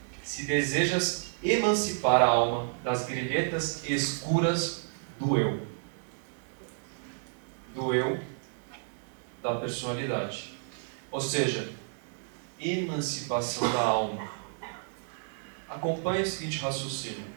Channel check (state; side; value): silent; left; digital silence